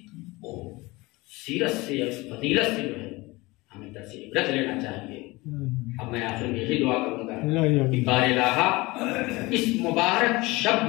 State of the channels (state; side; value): quieter; right; 22.3 dB